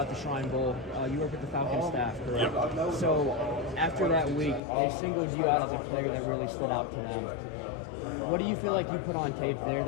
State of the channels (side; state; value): right; drops out; at 4.6 s